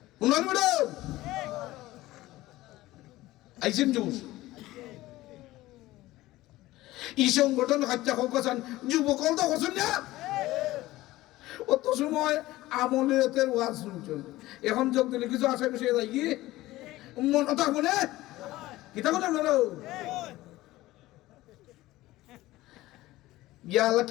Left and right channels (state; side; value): quieter; right; 17.3 dB